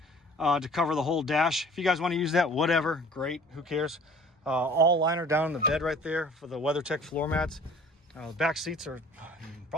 to cover the whole dash. If you guys want to use that, whatever, great. Who cares? All liner down in the bed right there for the WeatherTech floor mats. The back seats are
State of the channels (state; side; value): normal; both; correlation 0.48